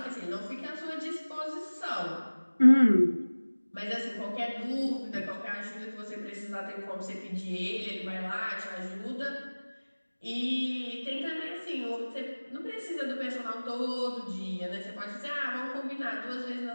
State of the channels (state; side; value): inverted; both; correlation -1.00